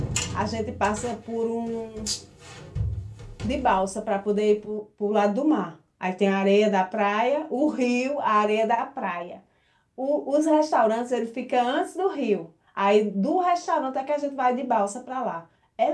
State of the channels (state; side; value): identical; both; correlation 1.00